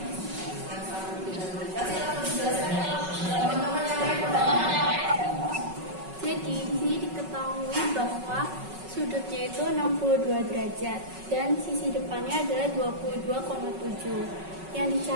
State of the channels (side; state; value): left; late; 5.3 ms